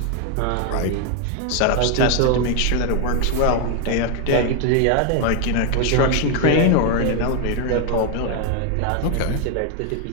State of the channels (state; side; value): different; both; correlation 0.01